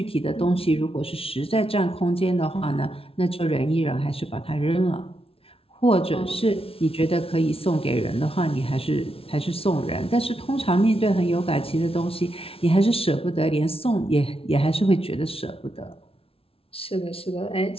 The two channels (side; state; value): right; late; 0.27 ms